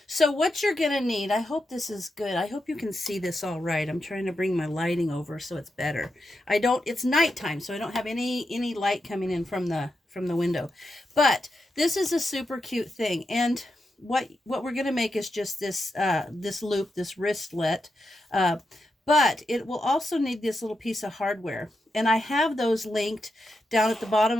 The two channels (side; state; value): both; normal; correlation 0.86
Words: So what you're going to need, I hope this is good. I hope you can see this all right. I'm trying to bring my lighting over so it's better. It's nighttime, so I don't have any light coming in from the window. But this is a super cute thing. And what we're going to make is just this loop, this wristlet. But it will also need this little piece of hardware. And I have those linked down at the bottom